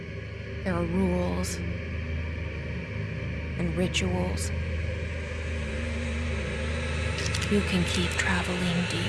There are rules and rituals. You can keep traveling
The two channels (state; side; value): identical; both; correlation 1.00